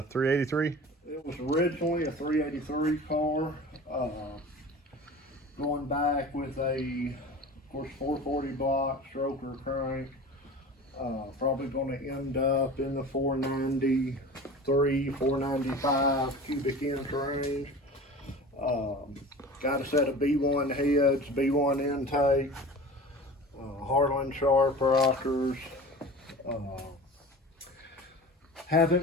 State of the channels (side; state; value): both; normal; correlation 0.37